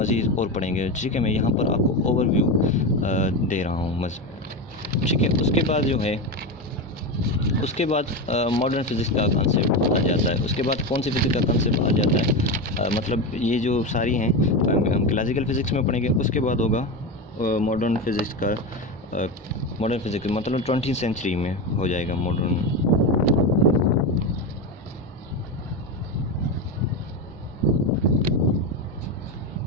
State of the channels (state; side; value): normal; both; correlation 0.17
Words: और पढ़ेंगे, ठीक है। मैं यहाँ पर आपको ओवरव्यू दे रहा हूँ, ठीक है। उसके बाद मॉडर्न फिज़िक्स का कंसेप्ट आ जाता है। उसके बाद कौन सी फिज़िक्स का कंसेप्ट आ जाता है, मतलब ये जो सारी हैं हम क्लासिकल फ़िज़िक्स में पढ़ेंगे। उसके बाद होगा मॉडर्न फिज़िक्स मतलब 20वीं सेंचुरी में हो जाएगा मॉडर्न,